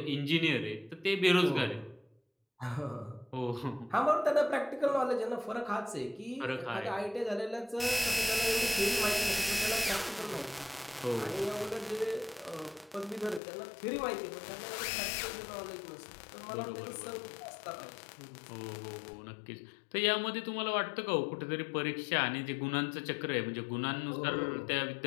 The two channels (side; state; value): right; drops out; at 13.4 s